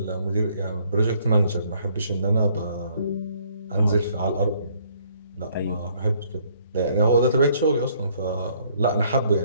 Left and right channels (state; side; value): inverted; both; correlation -0.65